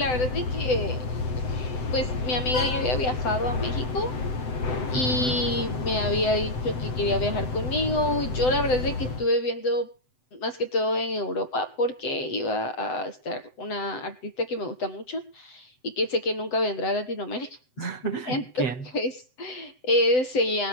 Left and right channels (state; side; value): late; right; 7.8 ms